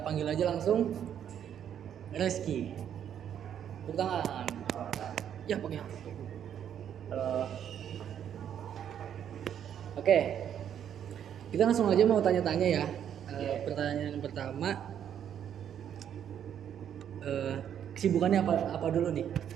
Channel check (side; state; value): left; quieter; 9.4 dB